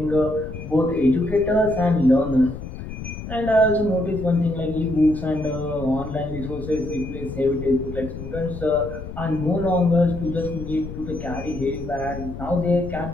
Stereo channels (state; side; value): noise; left; rumble, 9 dB below the sound